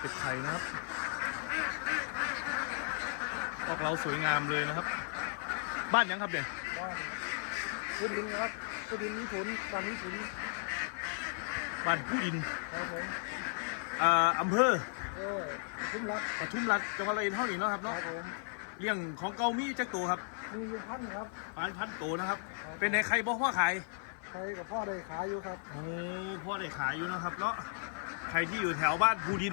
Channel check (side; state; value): right; silent; 54 dB below the other